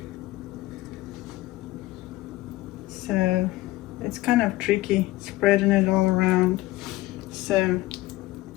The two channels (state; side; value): quieter; right; 18.2 dB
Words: So it's kind of tricky spreading it all around. So